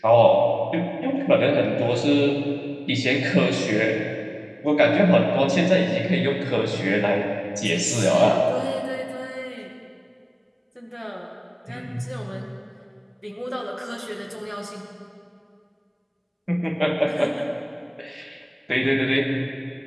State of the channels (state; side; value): identical; both; correlation 1.00